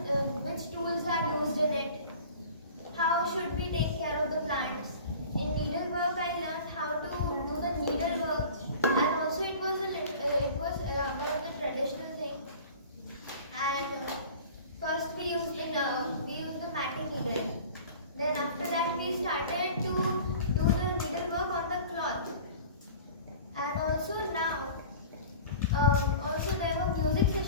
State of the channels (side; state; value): both; inverted; correlation -0.42